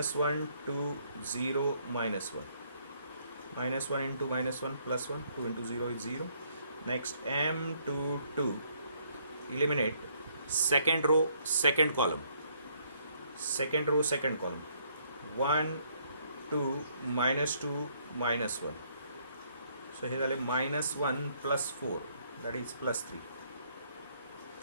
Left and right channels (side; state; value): both; inverted; correlation -0.69